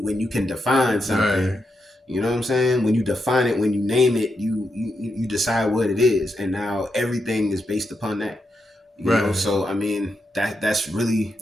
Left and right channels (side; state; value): both; normal; correlation 0.84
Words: can define something. Right. You know what I'm saying? When you define it, when you name it, you decide what it is, and now everything is based upon that. You know, so I mean that's really